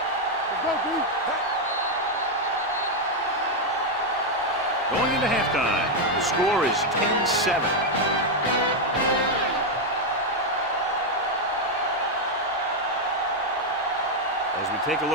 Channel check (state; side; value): normal; both; correlation 0.02